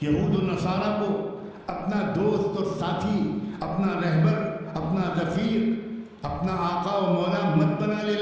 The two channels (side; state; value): both; identical; correlation 1.00